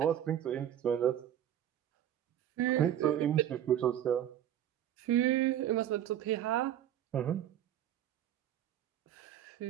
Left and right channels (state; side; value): quieter; left; 11.0 dB